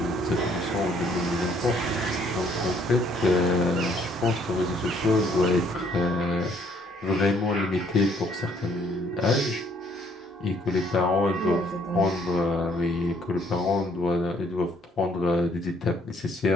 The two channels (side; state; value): both; normal; correlation 0.65